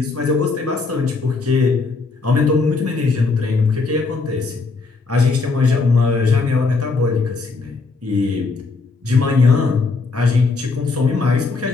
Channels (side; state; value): right; quieter; 4.1 dB